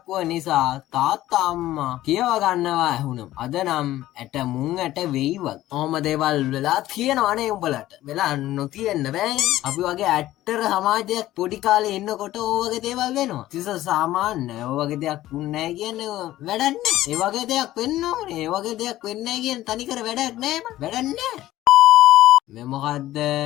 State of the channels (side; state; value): right; quieter; 14.9 dB